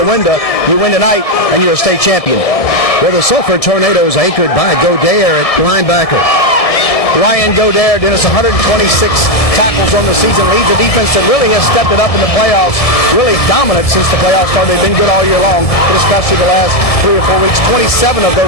window. You win tonight, and you're a state champion. Well, the Sulphur Tornadoes anchored by Godare at linebacker. Ryan Godare, Dennis, 126 tackles on the season, leads a defense that really has stepped it up in the playoffs, really dominant since the playoffs started. They've been good all year long, but especially the last 3 or 4 weeks. 27 of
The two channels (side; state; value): right; late; 1.7 ms